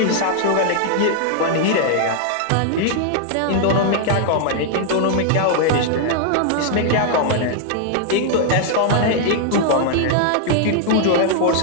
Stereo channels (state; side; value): different; both; correlation 0.00